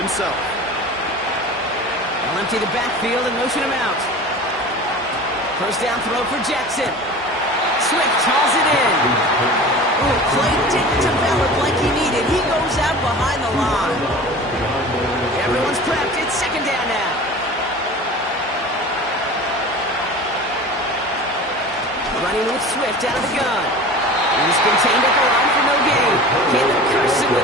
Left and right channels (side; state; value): both; normal; correlation 0.37